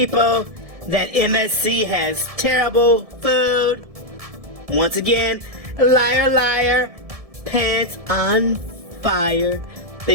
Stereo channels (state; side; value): late; left; 1.7 ms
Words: that MSC has terrible food, once again, liar, liar, pants on fire,